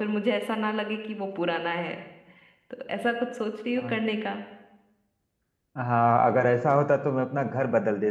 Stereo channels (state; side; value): identical; both; correlation 1.00